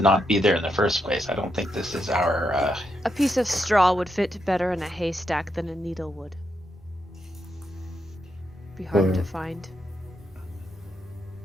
not be there in the first place. I don't think this is our. A piece of straw would fit better in a haystack than a needle would. Be hard to find.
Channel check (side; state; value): both; normal; correlation 0.82